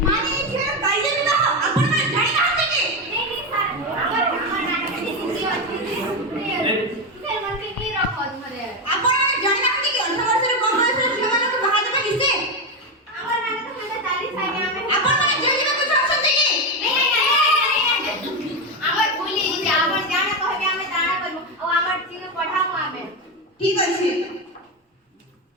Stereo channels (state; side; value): normal; both; correlation 0.12